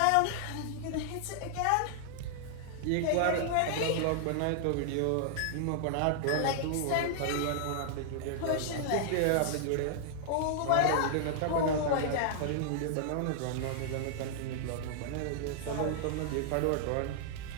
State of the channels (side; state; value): both; different; correlation -0.01